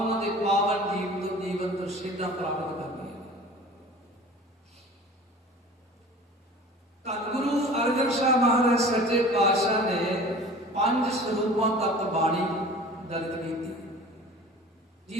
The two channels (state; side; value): normal; both; correlation 0.42